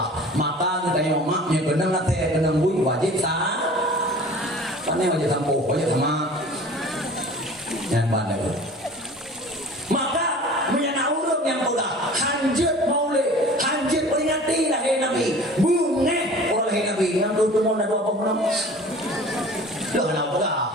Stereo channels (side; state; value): both; normal; correlation 0.43